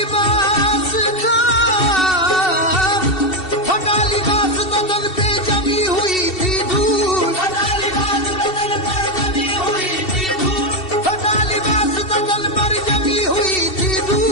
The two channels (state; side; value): late; right; 2.7 ms